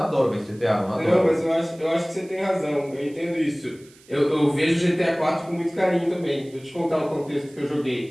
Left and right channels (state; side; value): noise; right; hiss, 26 dB below the sound